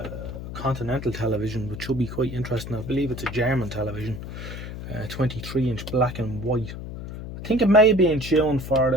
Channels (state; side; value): noise; left; hum, 9 dB below the sound